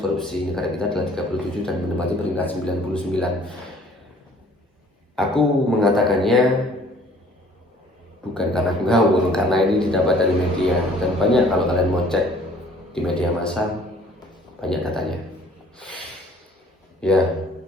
negara kita adalah 37 dan menempati peringkat 99. Aku mengatakannya bukan karena ngawur, karena ini didapat dari media, dan banyak kalau kalian mau cek di media massa banyak datanya.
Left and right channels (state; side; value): normal; both; correlation 0.55